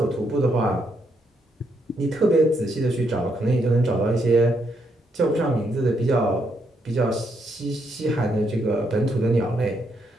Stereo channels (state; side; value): normal; both; correlation 0.77